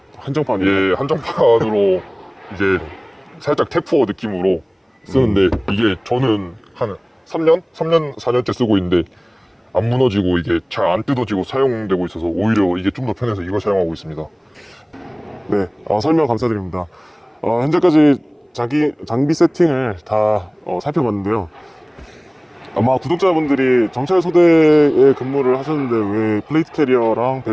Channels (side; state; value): both; identical; correlation 1.00